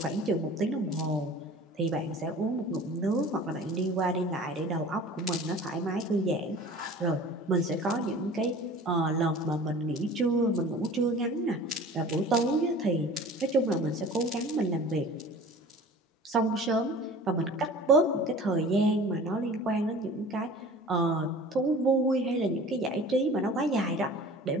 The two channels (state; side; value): normal; both; correlation 0.42